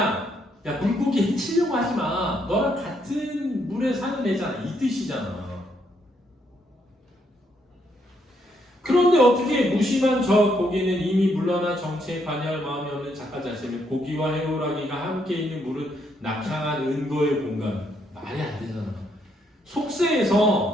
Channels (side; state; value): both; normal; correlation 0.74